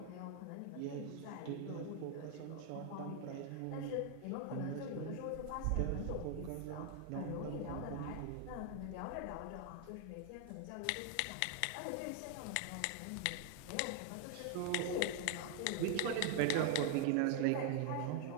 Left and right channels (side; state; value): both; different; correlation 0.00